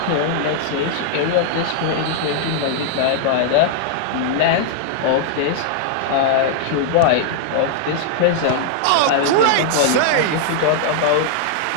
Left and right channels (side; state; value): both; different; correlation -0.01